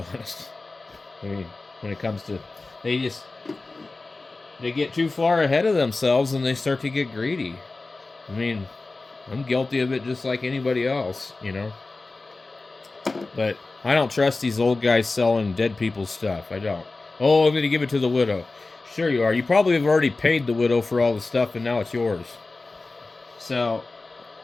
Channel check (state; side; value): quieter; right; 3.5 dB